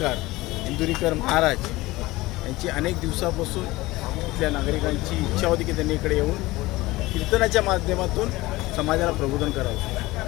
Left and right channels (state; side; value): quieter; right; 19.6 dB